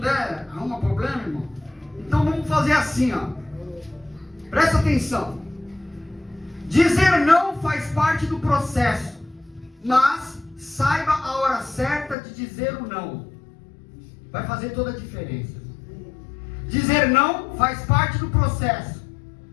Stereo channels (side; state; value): right; drops out; at 12.2 s